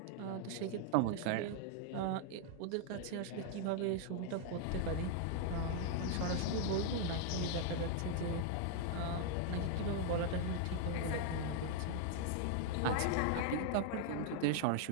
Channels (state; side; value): different; both; correlation 0.00